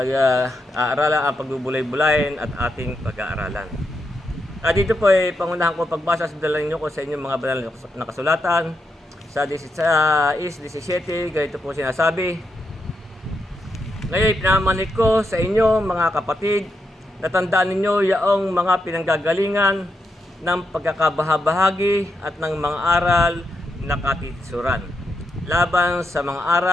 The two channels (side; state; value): both; normal; correlation 0.83